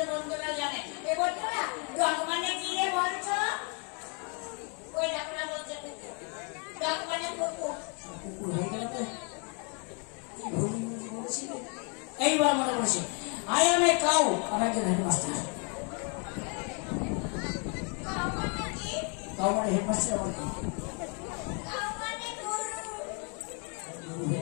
বন্ধুরা জানে। এ বন্ধুরা ডগ মানে কি রে বলছো? ওই ডাকনা বলছে ডগ মানে কুকুর। কুকুর হয়ে গেল তো? এইবার মনে পড়ছে, আই এম এ কাউ, আমি একজন হেডমাস্টার। কাউ মানে হেডমাস্টার আমার কি?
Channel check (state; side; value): quieter; right; 36.8 dB